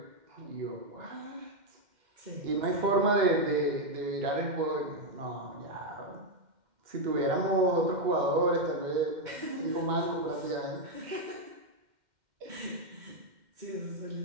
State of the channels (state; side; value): late; left; 2.1 ms